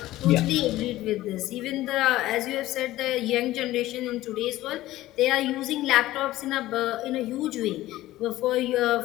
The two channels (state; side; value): quieter; right; 16.0 dB